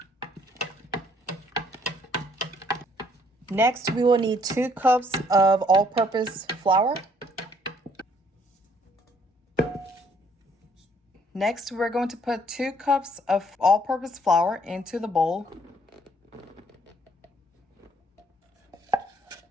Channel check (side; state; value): both; normal; correlation 0.64